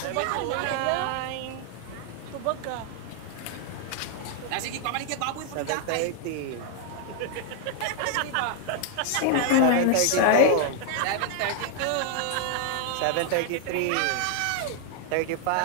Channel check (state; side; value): different; both; correlation 0.00